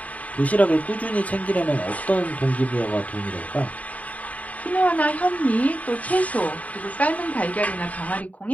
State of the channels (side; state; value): right; late; 0.070 ms